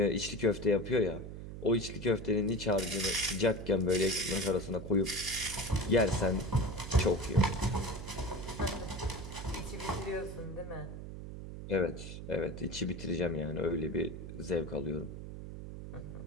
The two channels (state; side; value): noise; right; hum, 9 dB below the sound